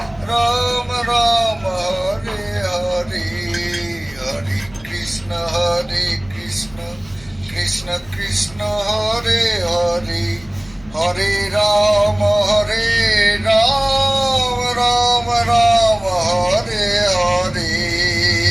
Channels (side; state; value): left; noise; hum, 24 dB below the sound